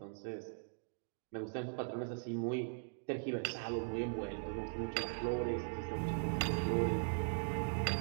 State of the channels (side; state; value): left; silent; digital silence